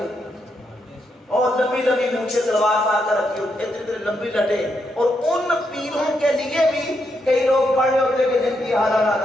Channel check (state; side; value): normal; both; correlation 0.80